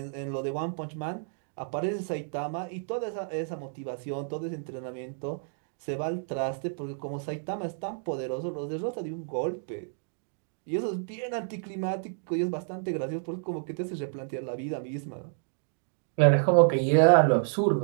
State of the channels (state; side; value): silent; left; digital silence